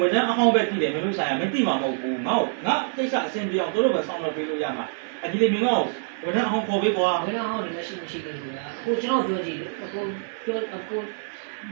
န်ထမ်းအဟောင်းပဲတည်တယ်မင်းတို့ဆိုင်ကမသိမှာမဟုတ်ဘူးငါကိစ္စအဆင်ပြေအောင်တို့ပဲဆောင်းတော့ပေးလို့ရမှာဒီလေမင်းကဝန်ထမ်းအဟောင်းခေါ်ပေးကွာ ဝန်ထမ်းဟောင်းလည်းမရှိဘူးကွာကိုကျွန်တော်ပြောကြည့်ကို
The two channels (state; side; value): silent; left; 61 dB below the other